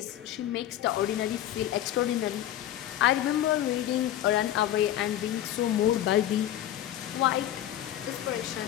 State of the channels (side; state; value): right; quieter; 12.3 dB